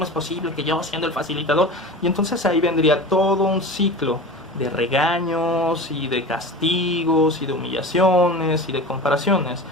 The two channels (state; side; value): normal; both; correlation 0.32